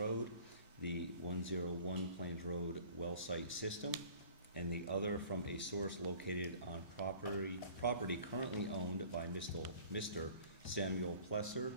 the 101 Plains Road well site system, and the other from a source located on property currently owned by Mr. Samuel Plesser,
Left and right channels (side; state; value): both; inverted; correlation -0.48